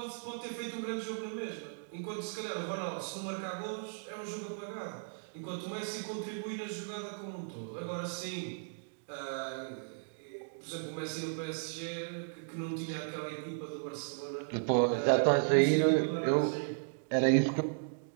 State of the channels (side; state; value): left; silent; digital silence